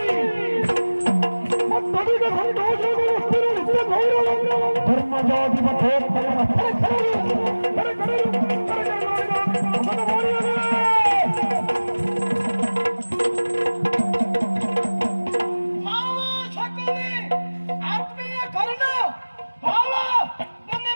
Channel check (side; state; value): both; inverted; correlation -1.00